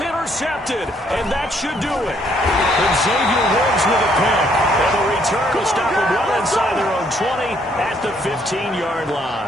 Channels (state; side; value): normal; both; correlation 0.68